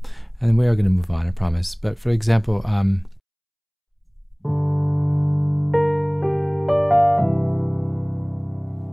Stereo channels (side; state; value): both; identical; correlation 1.00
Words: and we are going to move on, I promise, but for example,